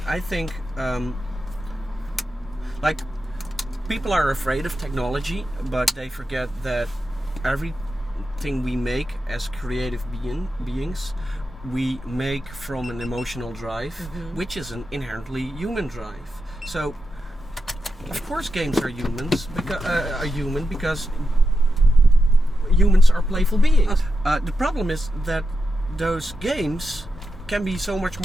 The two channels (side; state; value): both; normal; correlation 0.88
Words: I think. Like, people are afraid of technology, but they forget that everything we make as creative beings, we make from an emotional drive, which is an inherently human drive. So, of course, games are human because humans are playful beings. The problem is that those games can be so much